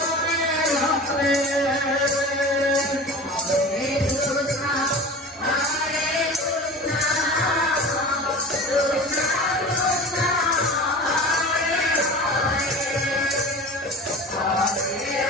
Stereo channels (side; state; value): both; normal; correlation 0.36